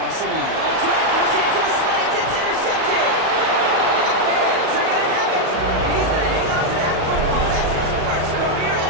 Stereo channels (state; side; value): late; left; 37 ms